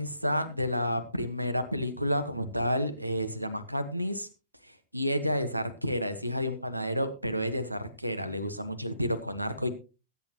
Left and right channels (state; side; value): inverted; both; correlation -0.78